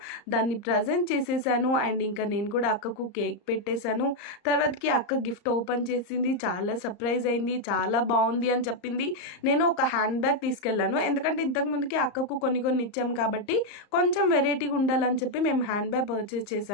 దాన్ని ప్రజెంట్ చేసేసాను. అండ్ ఇంకా నేను కూడా అక్కకు కేక్ పెట్టేశాను. తర్వాతకి అక్క గిఫ్ట్ ఓపెన్ చేసింది, చాలా సర్ప్రైజ్ అయింది, చాలా బాగుంది అని చెప్పింది. నేను ఒక హ్యాండ్ బ్యాగ్ తీసుకెళ్లాను, ఎందుకంటే ఇంతకు ముందుకి అక్కకు కొన్ని ఇచ్చాము కాబట్టి కొంచెం వెరైటీగా ఉండాలని చెప్పి మేము హ్యాండ్ బ్యాగ్ పర్చేస్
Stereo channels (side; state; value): right; late; 34 ms